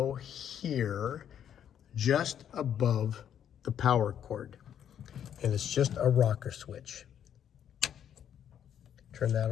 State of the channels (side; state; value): right; quieter; 9.4 dB